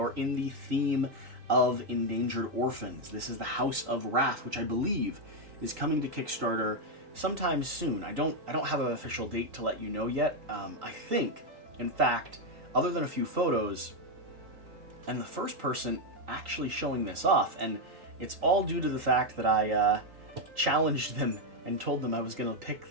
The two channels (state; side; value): late; left; 3.8 ms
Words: in the theme of, Endangered Orphans. This is the House of Rath, which I believe is coming to Kickstarter sometime soon. I don't have an official date to let you know yet. I think, in fact, other than a few photos, and the first person actually showing this off, and it's all due to the fact that I challenged them and told them I was gonna pick